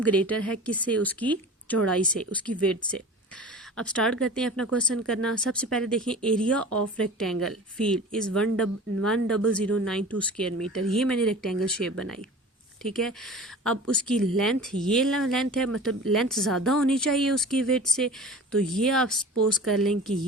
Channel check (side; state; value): both; normal; correlation 0.38